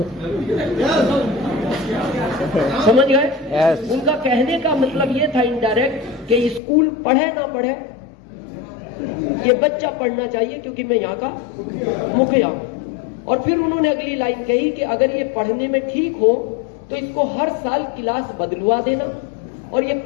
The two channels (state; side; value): drops out; right; at 6.6 s